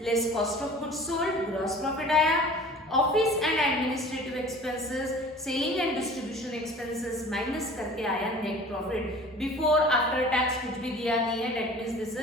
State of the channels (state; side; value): normal; both; correlation 0.45